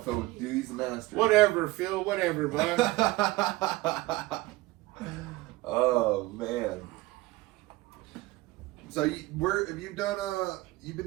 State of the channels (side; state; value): left; quieter; 19.4 dB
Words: Phil what to do. He's the master. Whatever, Phil. Whatever, bud. Oh man. So have you done you've